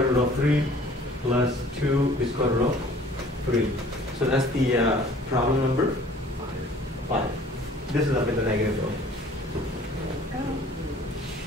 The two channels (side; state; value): both; normal; correlation 0.52